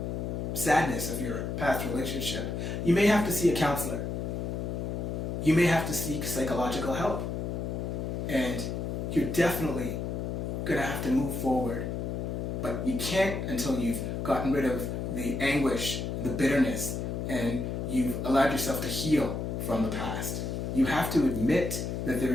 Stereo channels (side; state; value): left; noise; hum, 3 dB below the sound